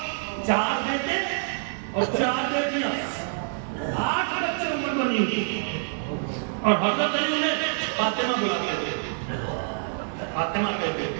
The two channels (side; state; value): left; silent; digital silence